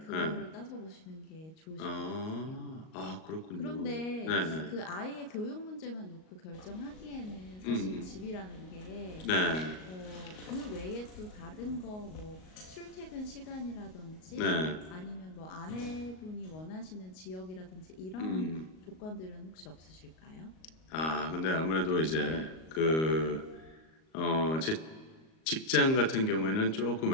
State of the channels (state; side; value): late; right; 38 ms